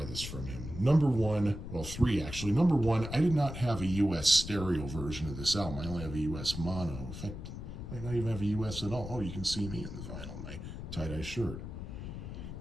this from him. Number one, well, 3 actually. Number one, I did not have a US stereo version of this album. I only have a US mono. In fact, I might not even have a US at all. Oh, you can see me in the vinyl, my tie-dye shirt.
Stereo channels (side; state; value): left; noise; rumble, 8 dB below the sound